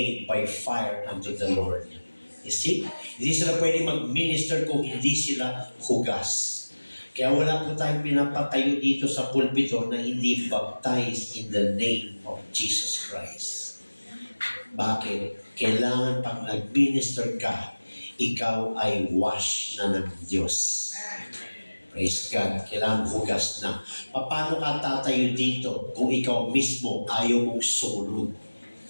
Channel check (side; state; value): both; inverted; correlation -1.00